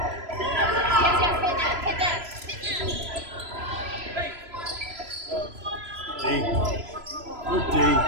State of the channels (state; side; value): late; left; 3.0 ms